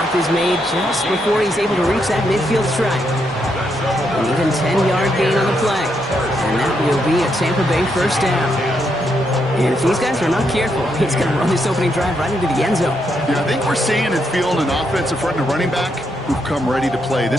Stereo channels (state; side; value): normal; both; correlation 0.79